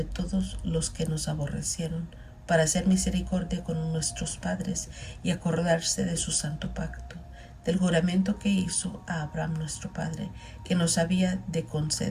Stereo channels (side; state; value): both; identical; correlation 1.00